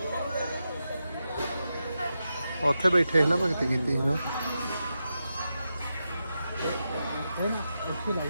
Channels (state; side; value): inverted; both; correlation -0.88